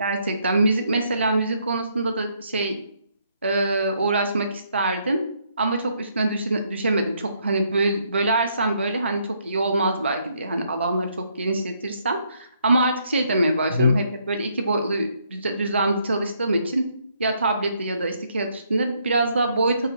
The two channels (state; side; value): inverted; both; correlation -0.72